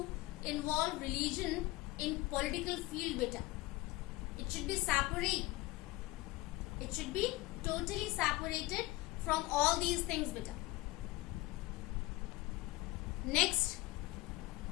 involve religion in political field, beta. It should be separate. It should be totally separated from all these things, beta. Next,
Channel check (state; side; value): quieter; right; 20.0 dB